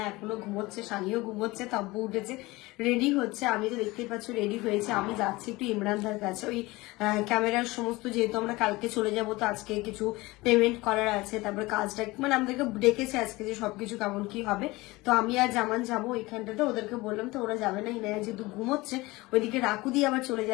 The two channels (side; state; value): right; quieter; 21.3 dB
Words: এখনো ঘুমোচ্ছে, সানিও ঘুমোচ্ছে, তাব্বু উঠেছে, রেডি হচ্ছে। আমি তো দেখতেই পাচ্ছ রেডি হয়েছে, আমি যাচ্ছি একটু ইমরানদার কাছে, ওই ক্যামেরার সমস্ত, যেহেতু আমরা কালকে চলে যাব, তো আজকে কিছু পেমেন্ট করার আছে, তারপরে কাজটা মানে আমাদেরকে ডেকেছে আজকে যে সবকিছু কেমন কি হবে। তো আমি আর জামান যাবো ওইখানটাতে, ওদেরকে বললাম, তো ওরা যাবে না, ইনায়া যেহেতু ঘুমোচ্ছে, ওইদিকে রাকুদি আবার চলে